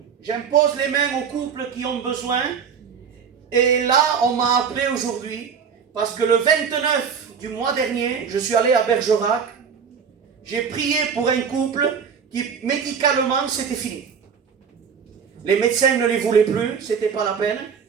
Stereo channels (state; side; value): quieter; left; 6.7 dB